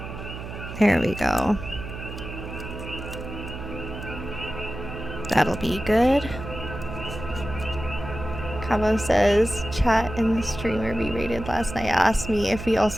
There we go. That'll be good. Cabo says, chat and the streamer we rated last night asked me if we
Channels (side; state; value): right; noise; hum, 10 dB below the sound